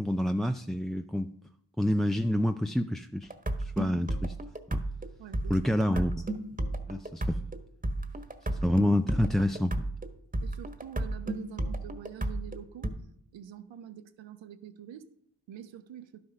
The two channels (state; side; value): normal; both; correlation 0.92